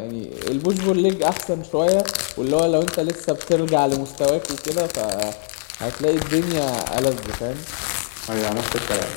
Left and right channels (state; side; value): silent; right; 64 dB below the other